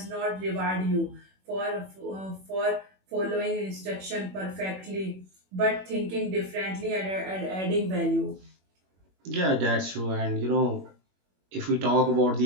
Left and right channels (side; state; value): left; late; 21 ms